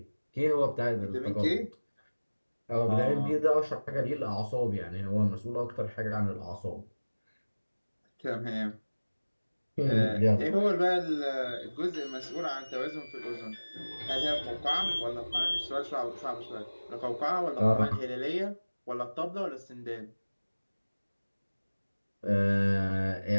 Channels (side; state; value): both; inverted; correlation -1.00